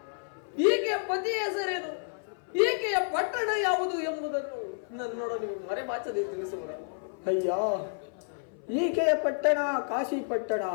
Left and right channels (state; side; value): silent; right; 58 dB below the other